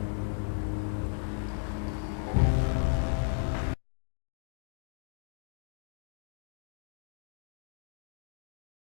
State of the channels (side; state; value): right; silent; 54 dB below the other